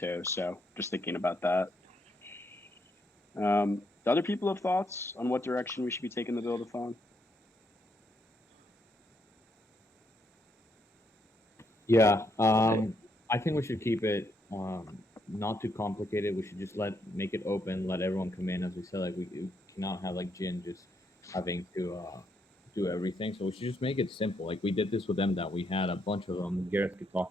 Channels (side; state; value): both; normal; correlation 0.76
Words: So just thinking about that. Do other people have thoughts on what direction we should be taking the buildathon? Yeah, I think we should keep it not too complicated. We should just make it open, let everyone come in. As we said, like we cannot have like Jin just having to do everything. So we should just make it simple. Like we did this with them, that we had a bunch of them. Gareth could